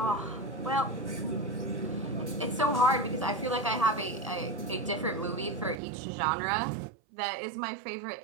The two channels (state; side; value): drops out; left; at 5.8 s